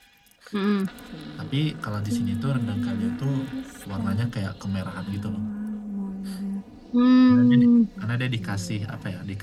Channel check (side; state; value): both; identical; correlation 1.00